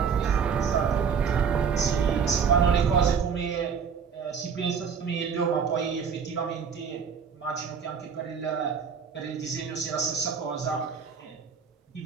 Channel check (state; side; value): quieter; left; 6.5 dB